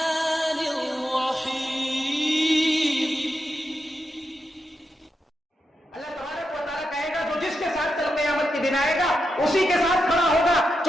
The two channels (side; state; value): both; normal; correlation 0.86